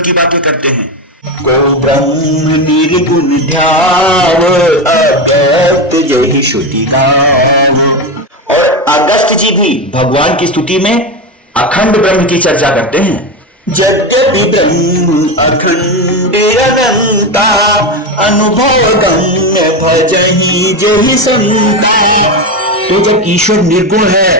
बातें करते हैं, को ब्रह्म निर्गुण ध्याव अगस्त जहि श्रुति गाव, और अगस्त जी भी भगवान की स्तुति में अखंड ब्रह्म की चर्चा करते हैं। यद्यपि ब्रह्म अखंड अनंता, अनुभव गम्य भजहि जहि संता। तो जब ईश्वर निर्गुण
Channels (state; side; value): normal; both; correlation 0.15